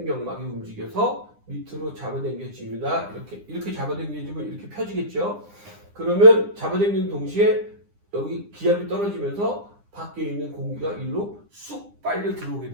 움직여서 밑으로 잡아당겨집니다. 이렇게 잡아당겨지면 이렇게 펴지겠죠. 그러면 잡아당기는 동시에 여기 기압이 떨어지면서 밖에 있는 공기가 일로 쑥 빨려 들어오게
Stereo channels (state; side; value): late; left; 9.9 ms